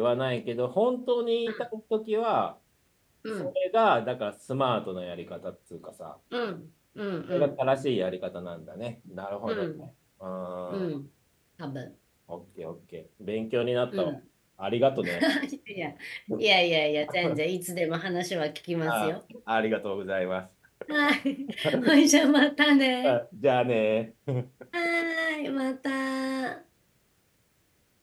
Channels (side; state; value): both; identical; correlation 1.00